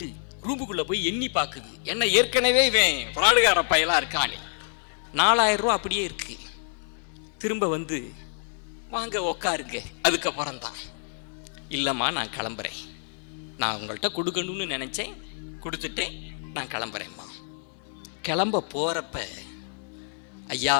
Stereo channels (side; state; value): right; silent; 60 dB below the other